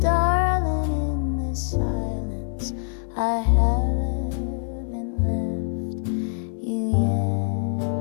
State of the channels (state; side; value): silent; right; digital silence